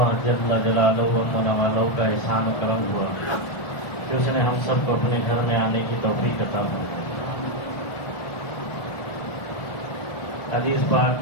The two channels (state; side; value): late; right; 1.4 ms